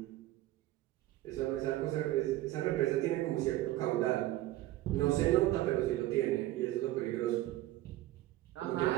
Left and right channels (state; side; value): quieter; left; 15.7 dB